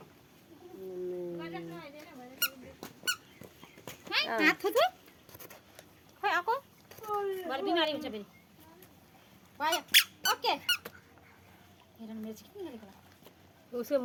खै आको भरे बिमारी हुन्छ फेरि भयो ओके हेर मेरो चाहिँ किन गरेको उसको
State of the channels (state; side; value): identical; both; correlation 1.00